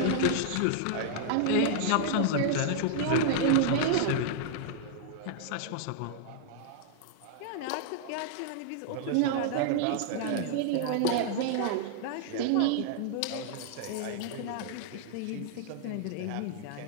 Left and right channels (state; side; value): different; both; correlation -0.01